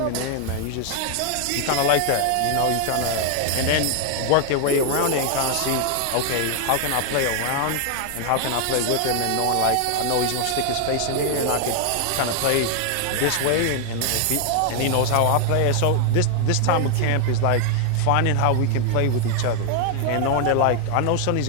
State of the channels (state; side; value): different; both; correlation 0.00